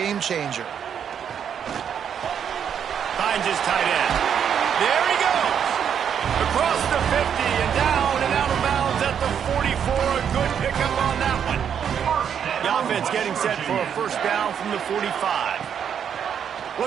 changer. Finds his tight end. There he goes. Across the 50 and down and out of bounds at the 44. A good pickup on that one. The offense getting set for a 1st down from the 45.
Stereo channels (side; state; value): left; quieter; 8.2 dB